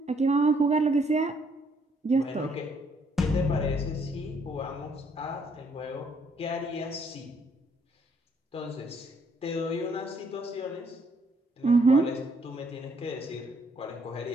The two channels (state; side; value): normal; both; correlation 0.68